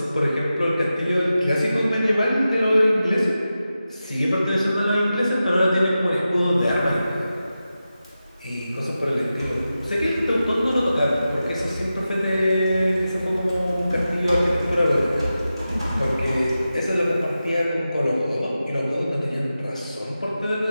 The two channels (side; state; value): both; inverted; correlation -0.92